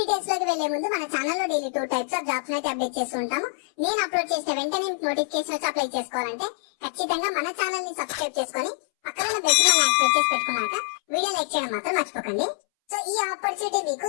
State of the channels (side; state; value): right; silent; 61 dB below the other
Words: లోకి వెళ్లే ముందు మన ఛానల్ లో డైలీ 2 types ఆఫ్ జాబ్స్ అయితే అప్డేట్ చేస్తూ ఉంటాము. నేను అప్లోడ్ చేసిన వెంటనే నోటిఫికేషన్ వచ్చి అప్లై చేసుకోవాలంటే ఖచ్చితంగా మన ఛానల్ ని సబ్స్క్రైబ్ చేసుకొని పక్కన బెల్ ని యాక్టివేట్ చేసి పెట్టుకున్నాక వీడియో లైక్ చేయడం మాత్రం మర్చిపోకండి. సో ఈ ఆపర్చునిటీ మీకు